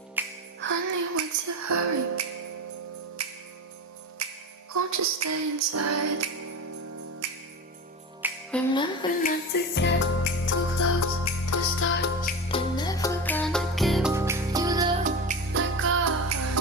Honey, what's your hurry? Won't you stay inside? Remember not to get too close to stars. They're never gonna give you love like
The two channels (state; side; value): normal; both; correlation 0.25